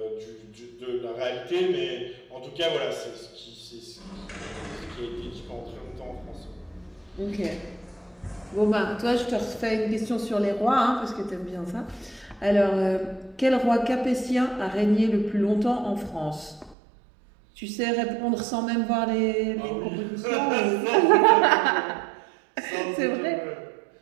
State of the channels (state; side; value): drops out; left; at 16.8 s